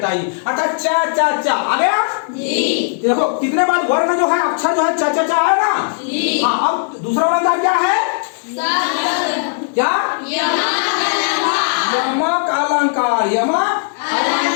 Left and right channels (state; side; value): silent; right; digital silence